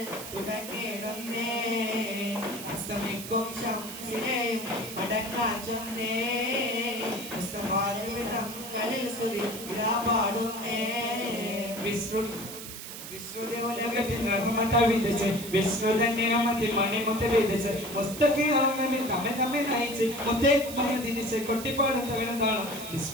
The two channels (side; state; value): right; noise; hiss, 10 dB below the sound